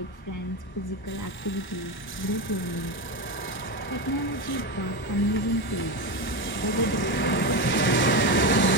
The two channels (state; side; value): late; right; 1.1 ms